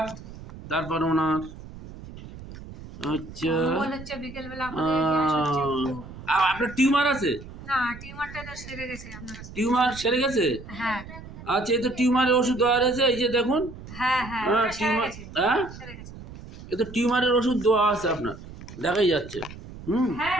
তারপর ওনার। আচ্ছা, মনে হচ্ছে বিকেল বেলা আমাদের গ্যাস হচ্ছে একটু। আপনার টিউমার আছে? না, টিউমারটা তো সেরে গেছে আপনার কাছে। টিউমার সেরে গেছে? হ্যাঁ আচ্ছা, এই তো টিউমারের ওষুধ দেওয়া রয়েছে, এই যে দেখুন। হ্যাঁ হ্যাঁ, হ্যাঁ, ওটা সেরে টিউমার, গেছে, হ্যাঁ, সেরে গেছে। এই তো টিউমারের ওষুধ দেওয়া আছে আপনার, দেখাই যাচ্ছে। হ্যাঁ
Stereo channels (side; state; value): right; noise; rumble, 15 dB below the sound